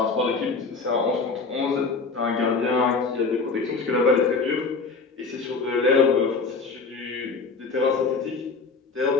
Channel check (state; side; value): quieter; right; 4.4 dB